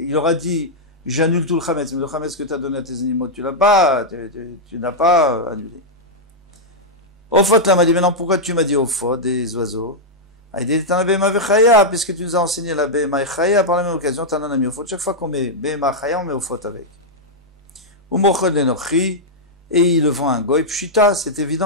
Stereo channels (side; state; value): both; normal; correlation -0.05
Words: dit, j'annule tout le chametz, mais le chametz que tu as donné à tes animaux, tu n'as pas annulé. Ofot là m'a dit, maintenant pourquoi tu m'as dit ofot des oiseaux? Il dit, t'en as béma vechaya, puisque tu nous as enseigné la béma chaya, par la même occasion, t'en as mis ofot. Chaque fois qu'on met béma chaya, on met ofot avec. Ou mochod lenochi, et il le vend à un goy. Pshita, c'est